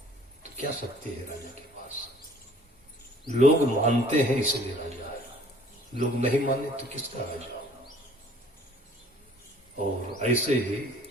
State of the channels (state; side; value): normal; both; correlation 0.55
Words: तो क्या शक्ति है राजा के पास? लोग मानते हैं इसलिए राजा है, लोग नहीं माने तो किसका राजा? और ऐसे ही